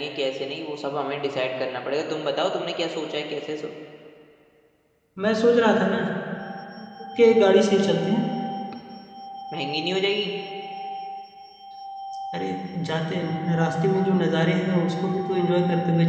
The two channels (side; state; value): both; identical; correlation 1.00